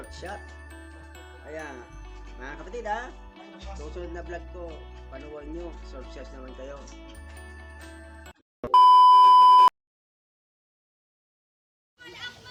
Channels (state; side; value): identical; both; correlation 1.00